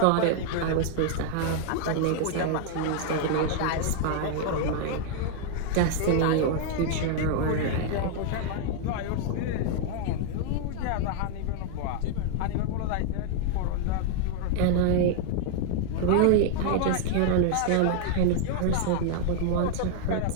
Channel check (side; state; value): both; different; correlation 0.00